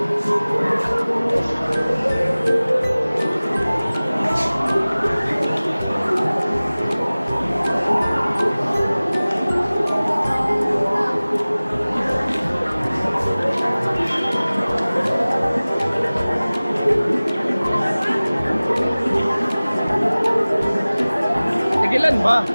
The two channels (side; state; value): both; inverted; correlation -0.99